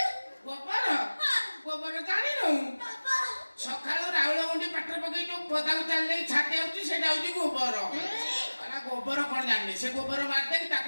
ଗୋବର ଜାଣିନୁ? ସକାଳୁ ରାଉଳ ଗୁଣ୍ଡି ପାଟରେ ପକେଇ ଯୋଉ ପଦାକୁ ଚାଲି ଛାଟି ଆଉଛି, ସେଇଟା ହଉଛି ଗୋବର। ଗୋବର କଣ ଜାଣିନି, ସେ ଗୋବର ମାରିଦେଇକି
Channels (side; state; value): both; inverted; correlation -1.00